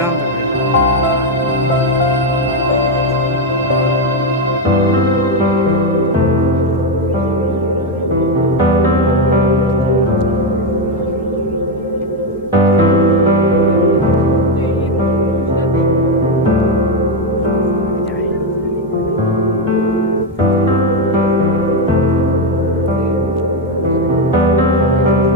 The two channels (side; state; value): both; normal; correlation 0.07